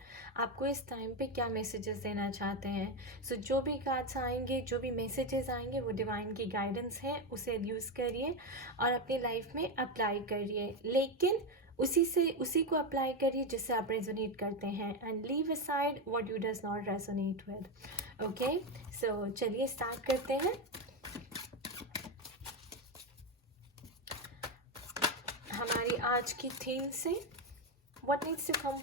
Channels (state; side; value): normal; both; correlation 0.11